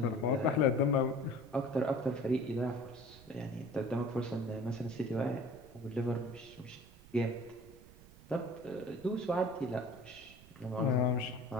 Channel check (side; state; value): right; noise; rumble, 21 dB below the sound